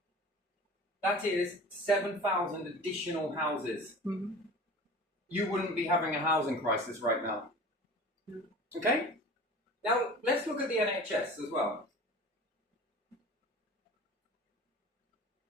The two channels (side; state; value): both; normal; correlation 0.39